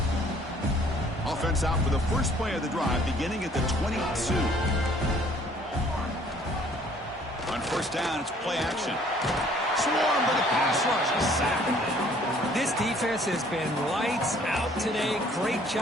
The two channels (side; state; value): both; normal; correlation 0.58